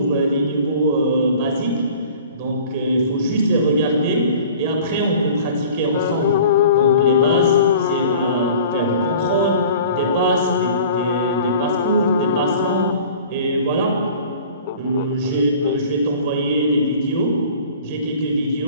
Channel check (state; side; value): inverted; both; correlation -0.46